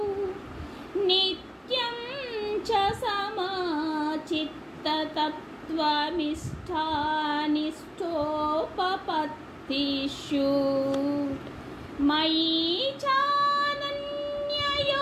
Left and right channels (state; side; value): identical; both; correlation 1.00